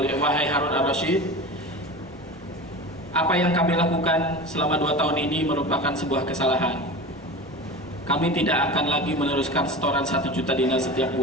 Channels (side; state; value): both; normal; correlation 0.31